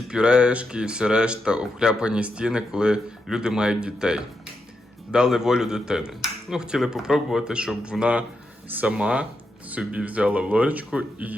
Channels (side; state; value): both; normal; correlation 0.84